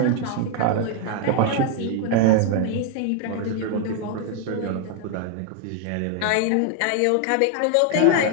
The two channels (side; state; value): both; different; correlation 0.00